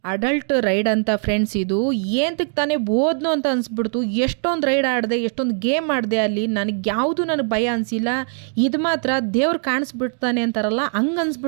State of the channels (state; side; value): silent; left; 56 dB below the other